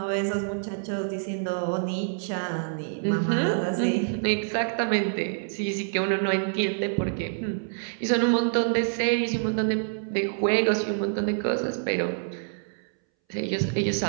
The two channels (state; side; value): silent; left; 60 dB below the other